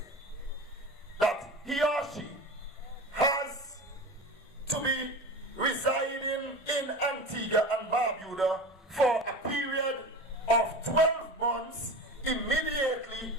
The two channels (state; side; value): normal; both; correlation 0.32